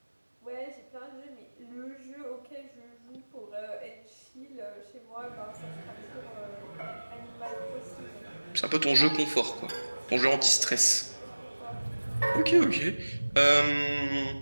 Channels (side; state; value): both; inverted; correlation -1.00